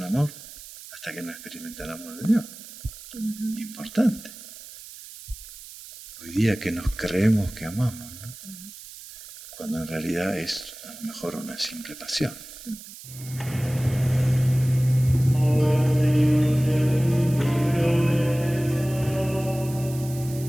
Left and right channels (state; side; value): noise; right; hiss, 15 dB below the sound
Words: amor hasta que no experimenta el amor de Dios. Importante. Hoy día que nos creemos que amamos, ¿no? Cuando en realidad es a lo mejor una simple pasión.